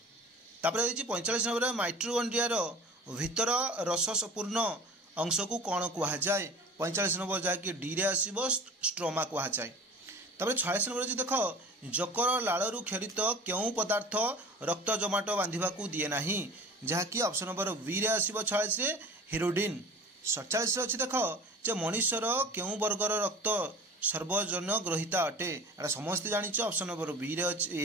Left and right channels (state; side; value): normal; both; correlation 0.41